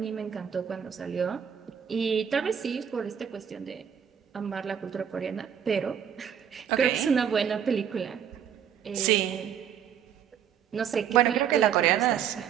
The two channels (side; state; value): left; quieter; 8.5 dB